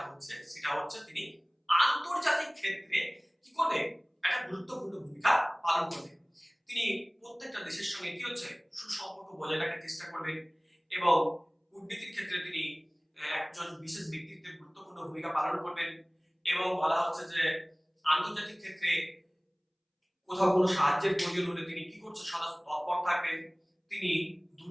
হচ্ছে সেটা হচ্ছে তিনি আন্তর্জাতিক ক্ষেত্রে কি করবে, একটা গুরুত্বপূর্ণ ভূমিকা পালন করবে। তিনি প্রত্যেকটা দেশের সঙ্গে কি হচ্ছে সুসম্পর্ক বজায় রাখার চেষ্টা করবেন এবং কূটনীতির ক্ষেত্রে তিনি একজন বিশেষ ব্যক্তিত্বের গুরুত্বপূর্ণ ভূমিকা পালন করবেন। এবং বলা হচ্ছে যে আন্তর্জাতিক ক্ষেত্রে কোথাও কোনো সাহায্যের প্রয়োজন হলে তিনি কি করছে সদা তৎপর থাকবেন, তিনি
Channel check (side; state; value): both; identical; correlation 1.00